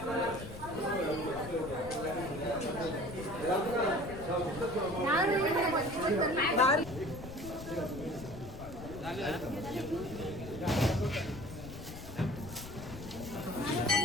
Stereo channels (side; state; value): left; noise; rumble, 12 dB below the sound